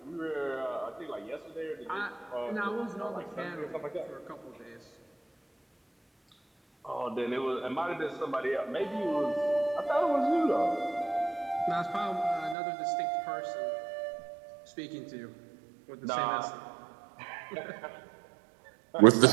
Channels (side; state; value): left; drops out; at 12.6 s